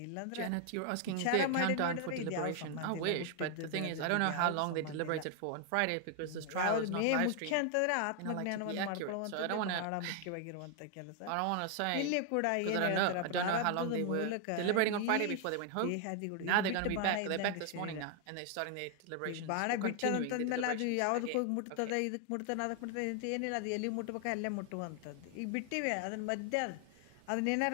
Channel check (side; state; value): both; different; correlation 0.00